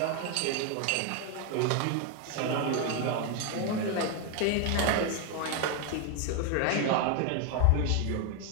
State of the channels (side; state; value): both; different; correlation 0.01